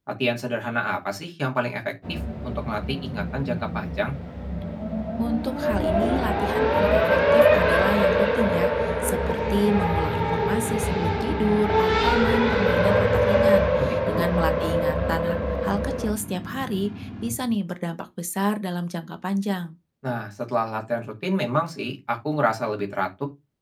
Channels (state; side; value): identical; both; correlation 1.00